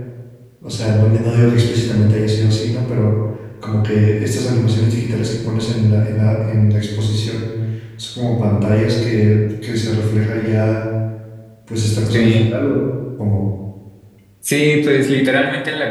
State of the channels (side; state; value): both; identical; correlation 1.00